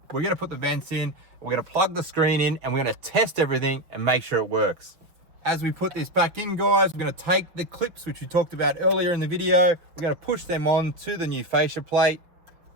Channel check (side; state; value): left; late; 5.8 ms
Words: we're going to put the vents in, we're going to plug the screen in, and we're going to test everything and make sure it works. As we put this back in, guys, we're going to take the clips which we talked about earlier in the video, we're going to push them on to the new fascia plate,